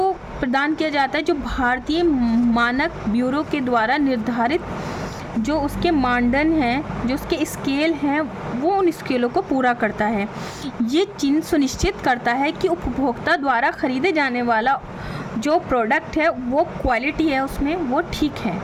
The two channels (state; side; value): identical; both; correlation 1.00